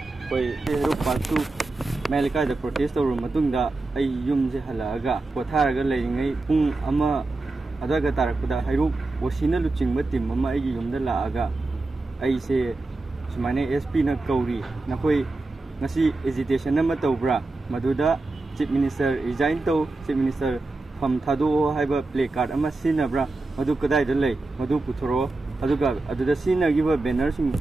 koi Hero Pansu Melika the protest or Matunda ay yum halaga Potaraga laying pung ama adaga tarakuda Hero Wasina luching matim mama ay yum the laaga ay say Sumane SP na Kauri Nakoi Nasi hesitation na matobra Maduda Chief Minister resign to Chief Minister Pamtado Haiba play card ama sinabra Madu Kadai the lay Madu Putoro Aduga Aduda Sina give a banner sing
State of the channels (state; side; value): quieter; left; 3.2 dB